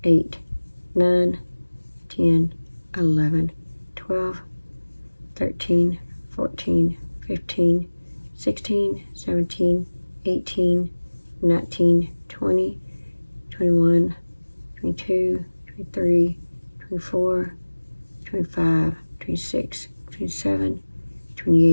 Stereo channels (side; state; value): both; inverted; correlation -1.00